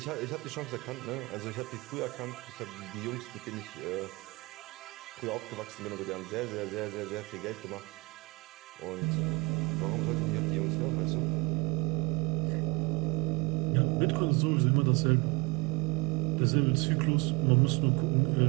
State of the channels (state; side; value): quieter; left; 25.8 dB